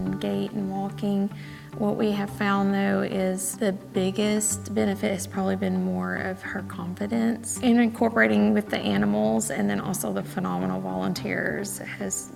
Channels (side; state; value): both; identical; correlation 1.00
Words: gait and walking. What we have found, though, is the biggest benefit has probably been more of her confidence and incorporating with the animals, and then also the phenomenal volunteers has